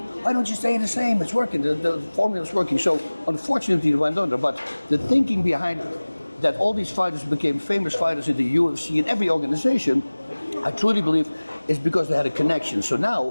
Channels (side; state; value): both; inverted; correlation -1.00